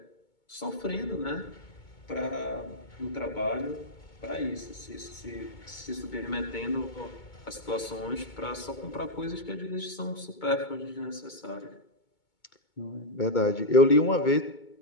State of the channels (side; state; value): right; late; 2.2 ms